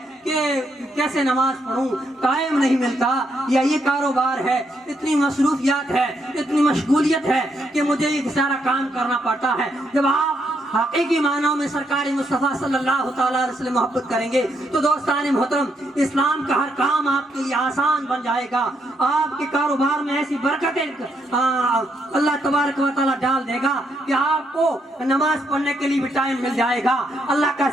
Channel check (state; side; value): normal; both; correlation 0.77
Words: کہ کیسے نماز پڑھوں، ٹائم نہیں ملتا، یا یہ کاروبار ہے، اتنی مصروفیات ہے، اتنی مشغولیت ہے کہ مجھے یہ سارا کام کرنا پڑتا ہے، جب آپ حقیقی معنوں میں سرکار مصطفیٰ صلی اللہ تعالیٰ علیہ وسلم محبت کریں گے تو دوستان محترم اسلام کا ہر کام آپ کے لیے آسان بن جائے گا۔ آپ کے کاروبار میں ایسی برکتیں اللہ تبارک و تعالیٰ ڈال دے گا کہ آپ کو نماز پڑھنے کے لیے بھی ٹائم مل جائے گا، اللہ کا